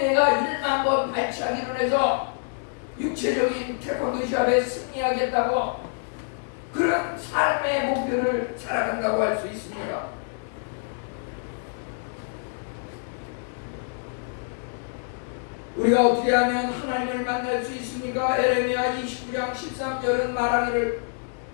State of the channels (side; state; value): right; silent; digital silence